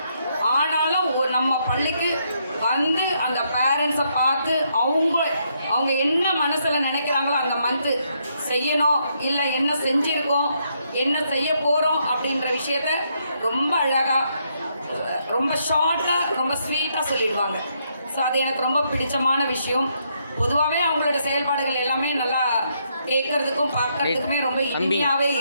ஆனாலும் நம்ம பள்ளிக்கு வந்து அந்த பேரண்ட்ஸை பார்த்து அவங்க என்ன மனசில் நினைக்கிறாங்களோ அந்த மந்த்து செய்யணும், இல்லை என்ன செஞ்சுருக்கோம், என்ன செய்ய போகிறோம் அப்படின்ற விஷயத்த ரொம்ப அழகாக, ரொம்ப ஷார்ட்டாக, ரொம்ப ஸ்வீட்டாக சொல்லிடுவாங்க. ஸோ அது எனக்கு ரொம்ப பிடிச்சமான விஷயம். பொதுவாகவே அவங்களோட செயல்பாடுகள் எல்லாமே நல்லா கேட்கறதுக்கும் பார்க்கறதுக்குமே ரொம்ப இனிமையாகவே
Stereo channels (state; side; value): inverted; both; correlation -0.75